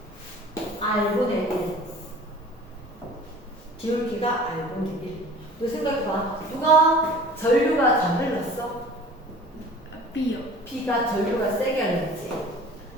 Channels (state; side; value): normal; both; correlation 0.45